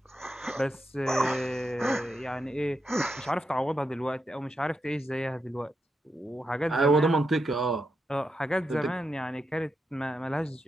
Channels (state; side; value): normal; both; correlation 0.85